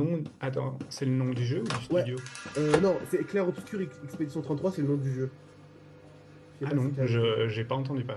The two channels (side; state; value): both; identical; correlation 1.00